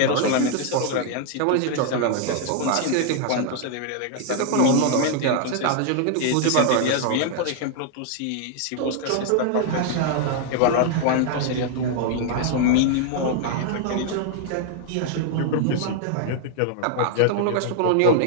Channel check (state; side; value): different; both; correlation 0.00